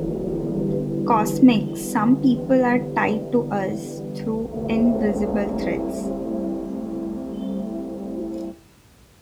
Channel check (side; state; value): both; identical; correlation 1.00